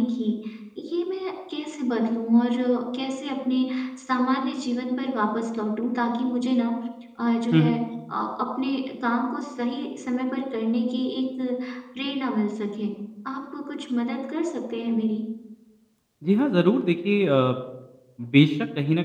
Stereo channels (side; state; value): both; identical; correlation 1.00